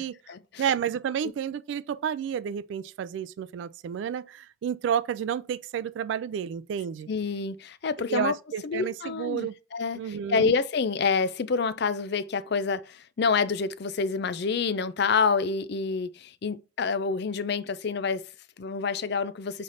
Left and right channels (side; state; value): both; normal; correlation -0.18